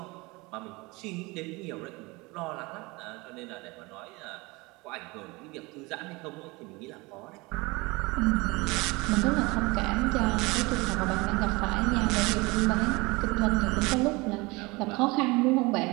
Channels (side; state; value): left; quieter; 24.3 dB